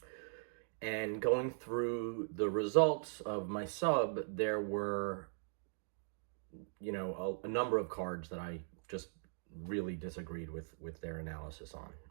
And going through the results of my sub, there were, a number of cards that I just really disagreed with their analysis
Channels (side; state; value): left; silent; digital silence